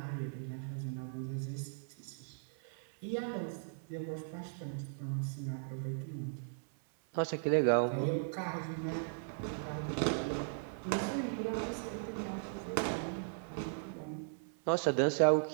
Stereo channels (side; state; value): left; silent; 53 dB below the other